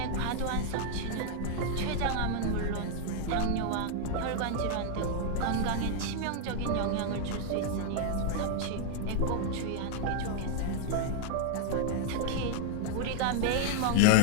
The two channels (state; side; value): different; both; correlation -0.01